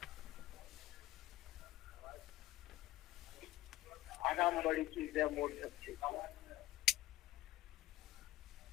आराम बड़ी चीज है, मोड़ सकते।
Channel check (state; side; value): quieter; right; 16.3 dB